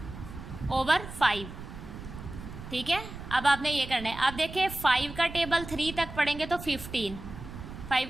ठीक है। अब आपने ये करना है। अब देखिए 5 का टेबल 3 तक पढ़ेंगे तो 15, 5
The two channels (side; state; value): right; noise; rumble, 11 dB below the sound